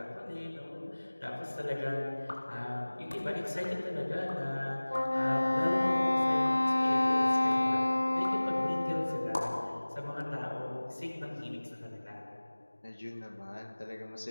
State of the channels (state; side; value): inverted; both; correlation -1.00